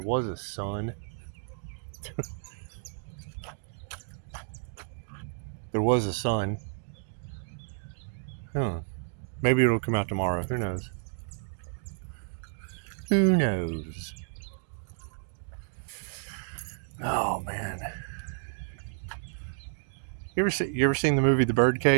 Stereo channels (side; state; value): left; silent; digital silence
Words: was a sun. There was a sun. Huh. Maybe it'll come out tomorrow. Who knows? Who knows? Oh man. You ever seen the movie The